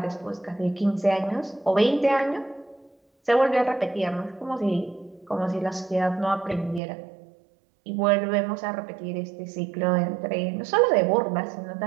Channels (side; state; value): left; drops out; at 6.8 s